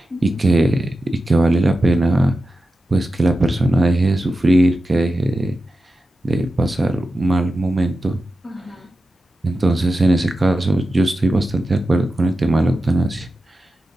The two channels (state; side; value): normal; both; correlation 0.92